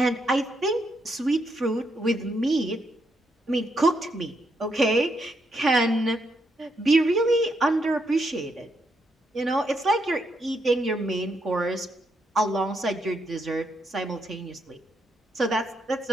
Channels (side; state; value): both; normal; correlation 0.78